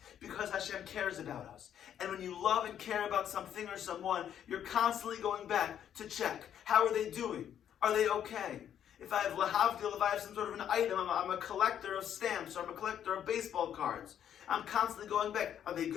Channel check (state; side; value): quieter; right; 9.6 dB